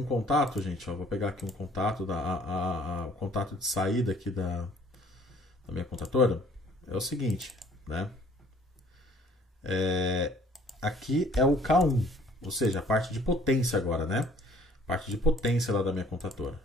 contato, gente. Ó, vou pegar aqui um contato, o contato de saída aqui da minha contatora. É o seguinte, né? Aqui é o K1, ou seja, a parte de potência agora, né? Parte de potência lá da minha contatora.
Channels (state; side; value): normal; both; correlation 0.57